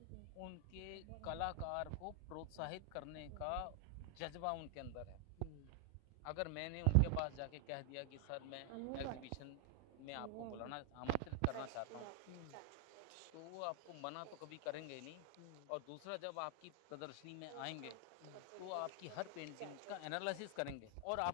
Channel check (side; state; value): both; different; correlation 0.00